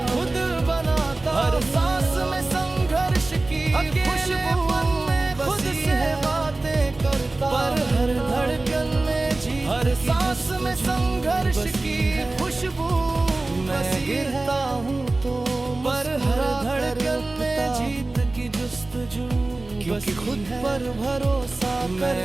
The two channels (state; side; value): quieter; left; 3.1 dB